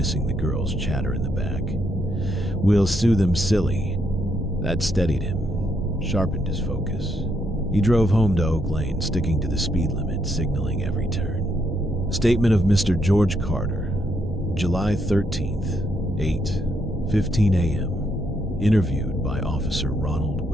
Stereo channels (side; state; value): both; normal; correlation 0.76